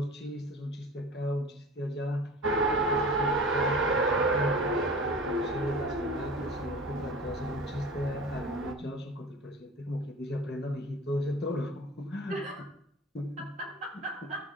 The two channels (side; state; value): both; normal; correlation 0.38